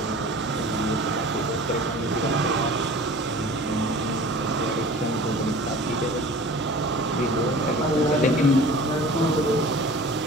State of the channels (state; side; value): normal; both; correlation 0.42